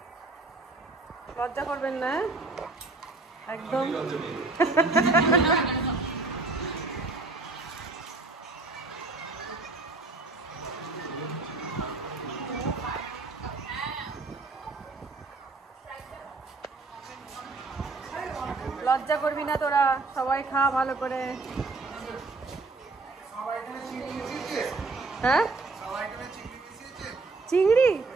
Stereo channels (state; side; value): quieter; left; 3.6 dB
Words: লজ্জা করবেন না একদম। লজ্জা করবি না তোরা, সবাই খা ভালো করে। হ্যাঁ চিংড়ি